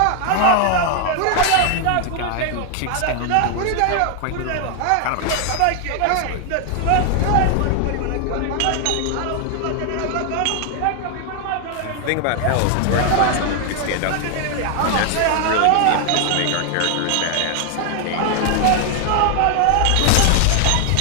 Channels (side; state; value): both; different; correlation 0.00